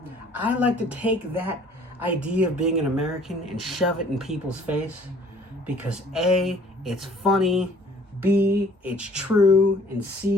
I like to take that idea of being an American and shove it in people's face, because A, it's funny, B, it's true, and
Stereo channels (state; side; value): normal; both; correlation 0.55